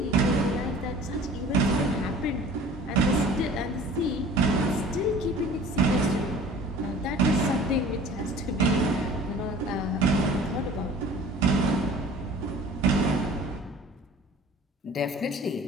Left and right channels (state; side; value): normal; both; correlation 0.45